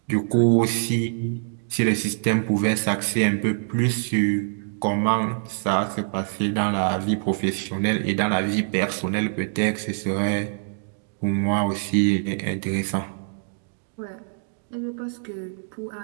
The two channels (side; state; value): left; silent; digital silence